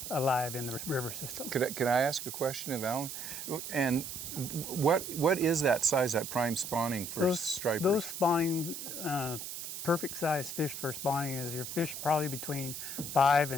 alive in the river system. Could I ask a question of Alan? And what is that size, that prime spawning for stripers? Those spawning, perfect size fish for spawning is your fish probably between 5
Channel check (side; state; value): right; noise; hiss, 7 dB below the sound